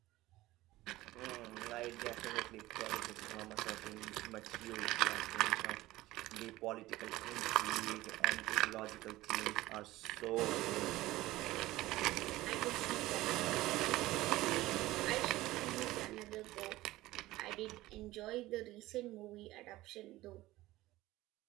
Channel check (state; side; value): quieter; left; 17.5 dB